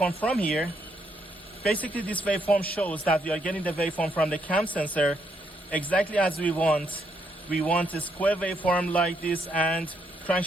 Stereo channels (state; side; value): normal; both; correlation 0.74